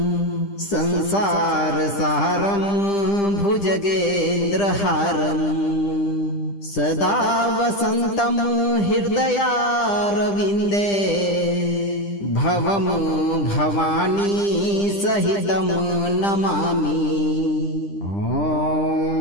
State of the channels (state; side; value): late; right; 10 ms